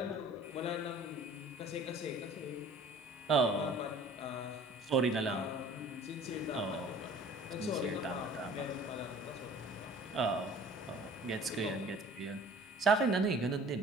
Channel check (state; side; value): normal; both; correlation 0.48